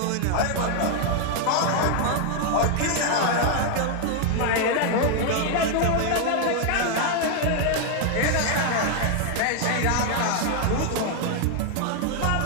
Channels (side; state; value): both; different; correlation 0.00